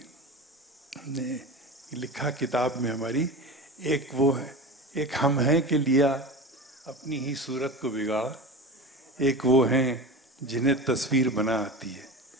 ने लिखा किताब में हमारी, एक वो है, एक हम हैं कि लिया अपनी ही सूरत को बिगाड़ा, एक वो हैं जिन्हें तस्वीर बना आती है।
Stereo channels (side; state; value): both; normal; correlation 0.30